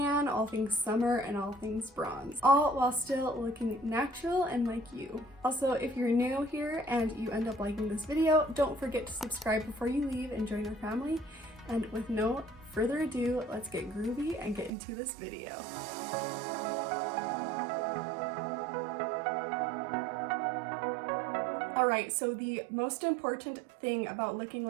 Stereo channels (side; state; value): left; drops out; at 14.7 s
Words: all things summer, and all things bronze, all while still looking natural and like you. Also, if you're new here and you end up liking this video, don't forget to subscribe before you leave and join our family. And with no further ado, let's get groovy and get into this video. Alright, so the most important thing about looking